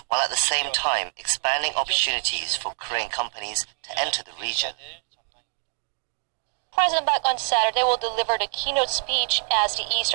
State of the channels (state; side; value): silent; left; 62 dB below the other